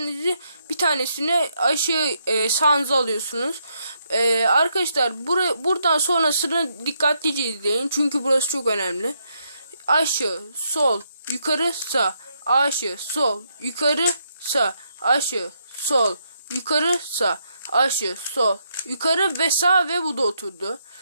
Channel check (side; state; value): both; inverted; correlation -0.77